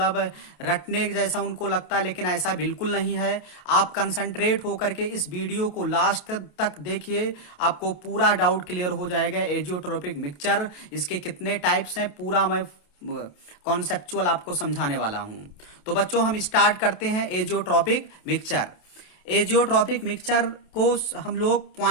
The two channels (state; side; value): late; right; 28 ms